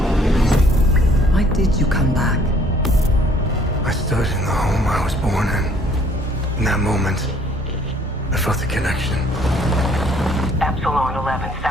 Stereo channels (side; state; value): both; normal; correlation 0.60